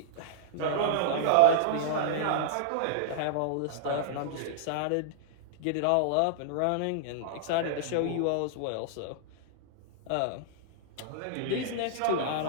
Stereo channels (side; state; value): both; different; correlation -0.01